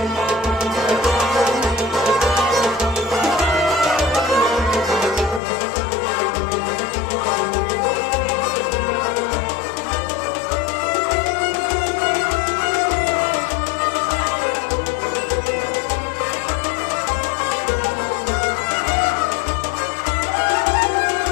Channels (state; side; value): drops out; right; at 5.4 s